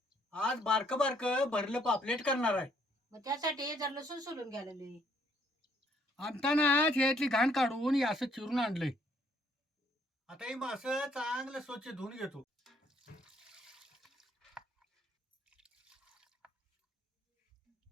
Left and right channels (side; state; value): both; normal; correlation 0.67